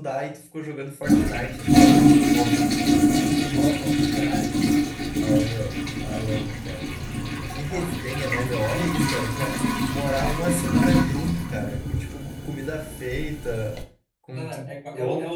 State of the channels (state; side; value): identical; both; correlation 1.00